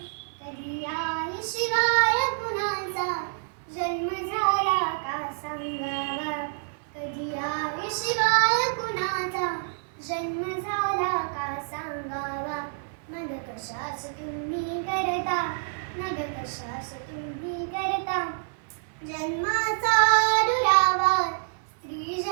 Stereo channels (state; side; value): silent; left; 60 dB below the other